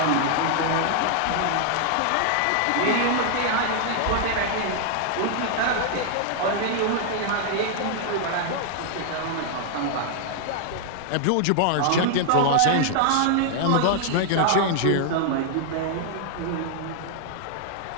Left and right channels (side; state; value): both; different; correlation -0.01